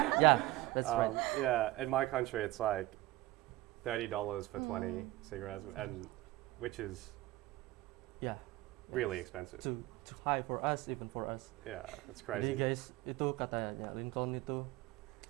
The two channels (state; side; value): quieter; left; 18.3 dB